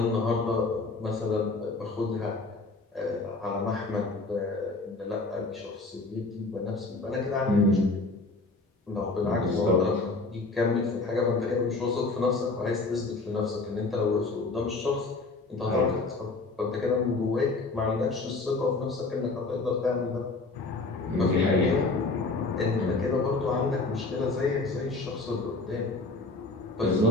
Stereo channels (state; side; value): quieter; right; 3.4 dB